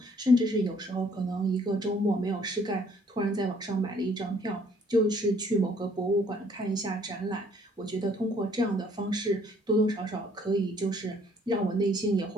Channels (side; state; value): both; normal; correlation 0.62